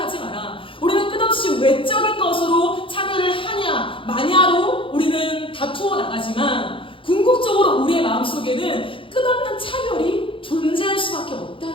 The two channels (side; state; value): right; late; 0.25 ms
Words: 마라. 우리는 끝없이 외적인 것으로 차별을 하냐 마냐로 우리는 다투어 나가지만 궁극적으로 우리의 마음속에는 끝없는 차별이 존재할 수밖에